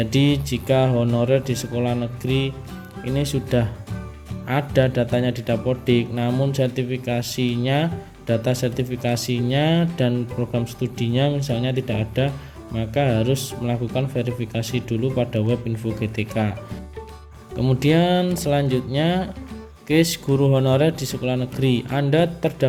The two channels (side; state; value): both; identical; correlation 1.00